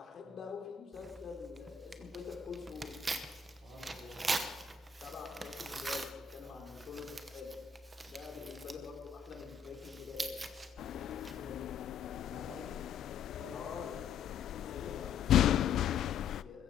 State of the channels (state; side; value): quieter; right; 6.5 dB